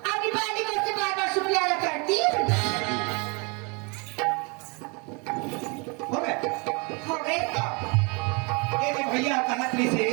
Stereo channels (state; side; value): quieter; left; 31.5 dB